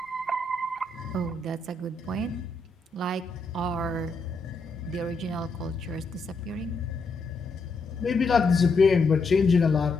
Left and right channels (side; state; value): right; quieter; 3.5 dB